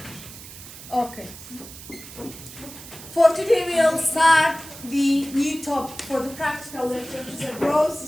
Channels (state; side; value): noise; right; hiss, 15 dB below the sound